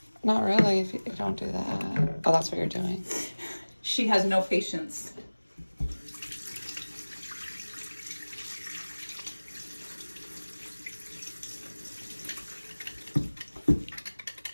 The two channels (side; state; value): both; inverted; correlation -1.00